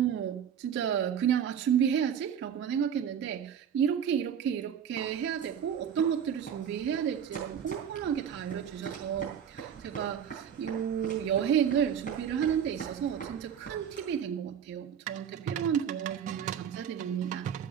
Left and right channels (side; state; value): left; quieter; 8.4 dB